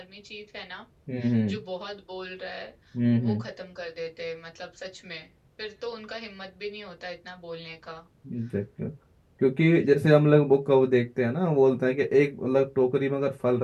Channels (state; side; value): identical; both; correlation 1.00